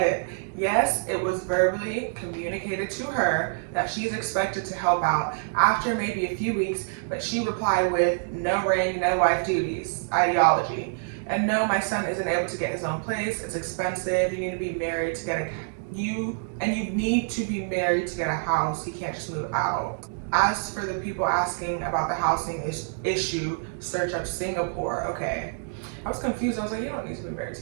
Yes, it was verbally communicated to her that she's expected to help out after maybe a few weeks, but she replied with no ring, no wife duties ideology. And no, my son isn't able to get his own place. It's expensive. You need to be married to get you need to be married to get a house. He can't just move out. As for the people asking about the housing issue, search up Singapore. Okay. I was confused. I was like, you don't need to be married to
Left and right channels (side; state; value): left; silent; digital silence